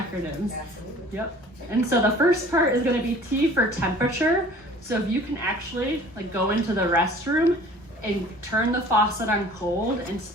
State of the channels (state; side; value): normal; both; correlation 0.48